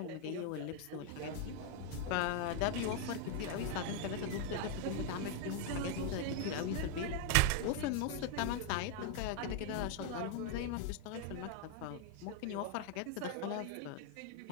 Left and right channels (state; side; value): different; both; correlation 0.00